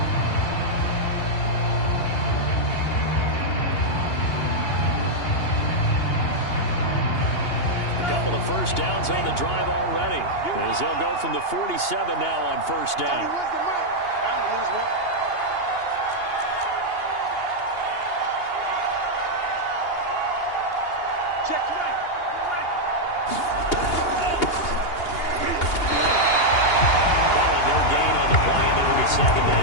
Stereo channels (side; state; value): right; late; 2.8 ms